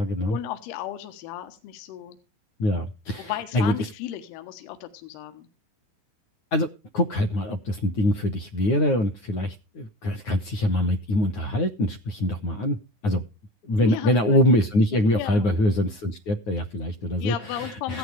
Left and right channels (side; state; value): right; late; 9.5 ms